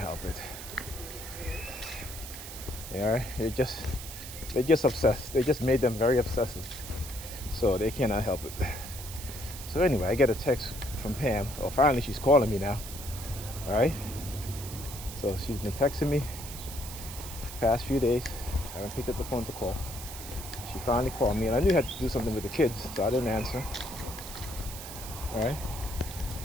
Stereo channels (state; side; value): noise; right; hiss, 11 dB below the sound